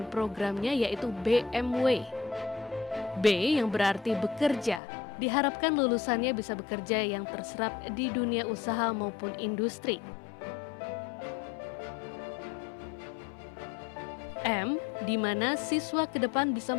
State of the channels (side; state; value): right; drops out; at 4.8 s